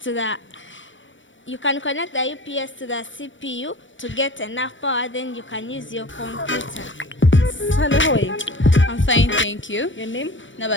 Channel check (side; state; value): right; late; 0.56 ms